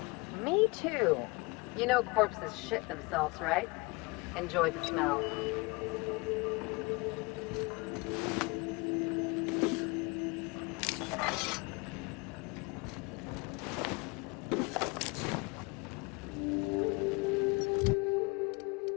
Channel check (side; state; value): right; quieter; 26.7 dB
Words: Me too. You know corpses shit themselves, right? Enjoy the smell.